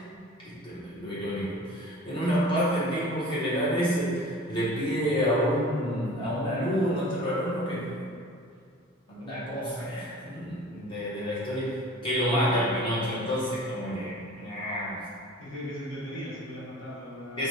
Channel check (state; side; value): normal; both; correlation 0.43